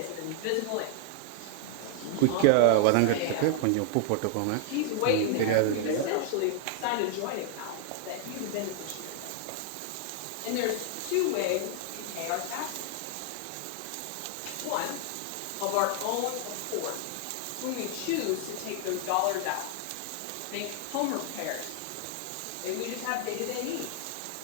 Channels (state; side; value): different; both; correlation 0.00